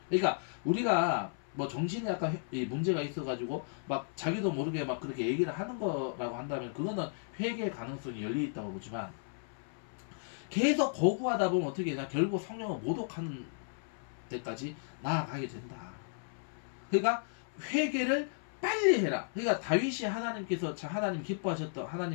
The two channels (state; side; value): silent; right; 55 dB below the other